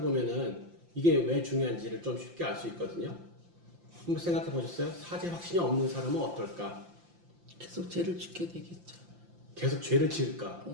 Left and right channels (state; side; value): late; left; 5.8 ms